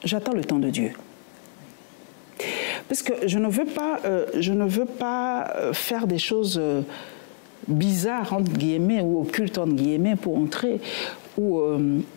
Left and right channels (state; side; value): silent; right; 57 dB below the other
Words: J'attends le temps de Dieu. Parce que je ne veux pas faire des choses bizarres, entre guillemets, ou occultes, entre guillemets, pour entrer, ou